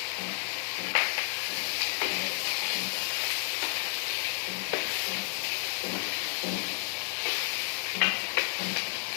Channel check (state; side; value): silent; right; 57 dB below the other